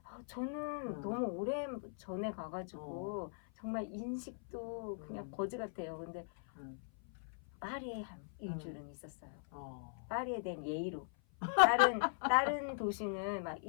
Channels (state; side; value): silent; right; 51 dB below the other